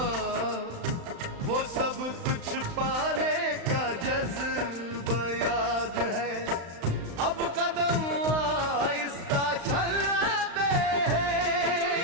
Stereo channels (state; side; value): late; left; 35 ms